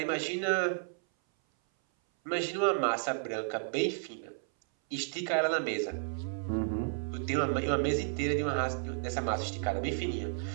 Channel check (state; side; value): silent; left; 56 dB below the other